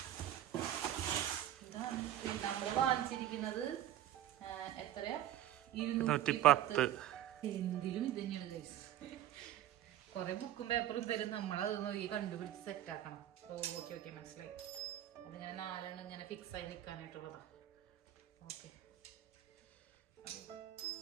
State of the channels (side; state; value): left; quieter; 12.4 dB